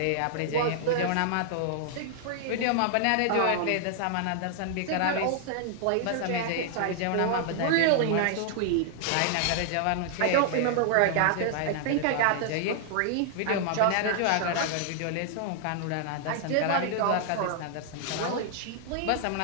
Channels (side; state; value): both; different; correlation 0.00